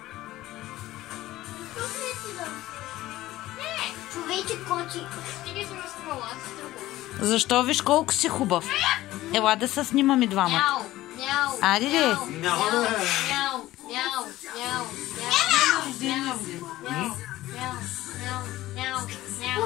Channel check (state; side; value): quieter; right; 16.1 dB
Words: Човече кочи. Стига се разкръла, аз се тръгвам. Защо? Виж колко си хубав. Ела да се снимаме двамата. Мяу, мяу. Айде ли? Мяу, мяу, мяу, мяу,